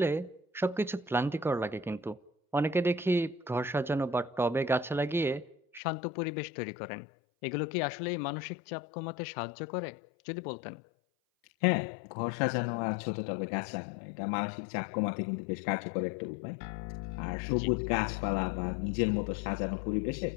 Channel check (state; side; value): drops out; right; at 5.8 s